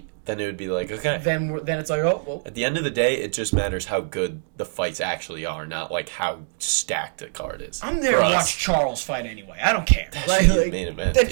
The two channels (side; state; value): left; silent; digital silence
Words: then it would be okay. Then it's well. At the end of the day, it just matters how good the fights actually are, not how stacked the card is. I'm there to watch Charles fight anyway. I don't care. That should be the main event.